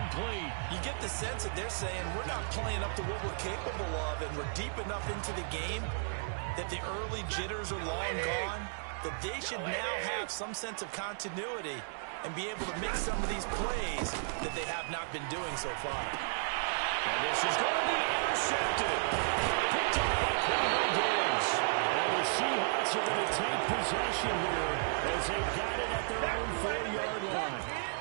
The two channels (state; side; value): silent; left; digital silence